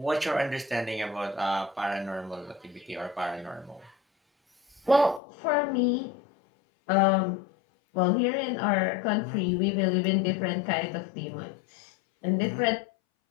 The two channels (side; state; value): right; drops out; at 5.2 s